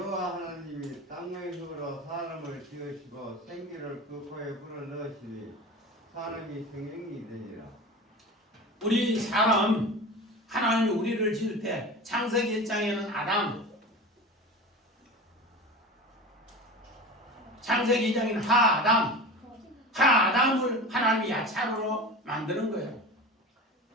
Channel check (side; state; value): both; normal; correlation 0.32